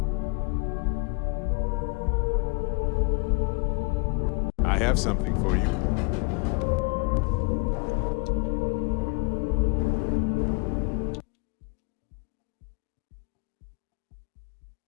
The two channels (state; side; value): quieter; right; 29.6 dB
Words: I have something for you.